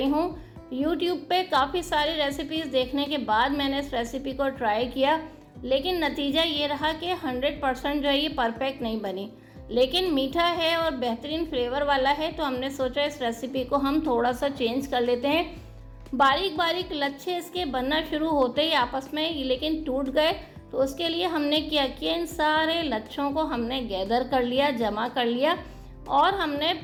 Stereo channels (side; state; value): both; identical; correlation 1.00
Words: हूँ। यूट्यूब पे काफ़ी सारी रेसिपीज़ देखने के बाद मैंने इस रेसिपी को ट्राई किया, लेकिन नतीजा ये रहा कि 100% जो है ये परफेक्ट नहीं बनी। लेकिन मीठा है और बेहतरीन फ्लेवर वाला है, तो हमने सोचा इस रेसिपी को हम थोड़ा सा चेंज कर लेते हैं। बारीक बारीक लच्छे इसके बनना शुरू होते ही आपस में लेकिन टूट गए, तो उसके लिए हमने क्या किया, इन सारे लच्छों को हमने गैदर कर लिया, जमा कर लिया और हमने